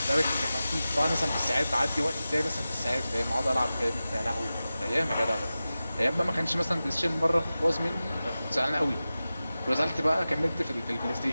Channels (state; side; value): inverted; both; correlation -0.95